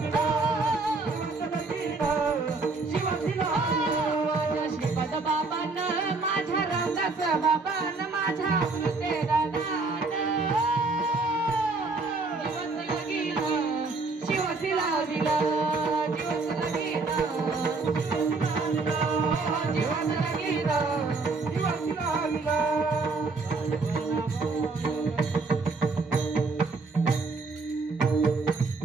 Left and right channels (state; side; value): quieter; left; 3.8 dB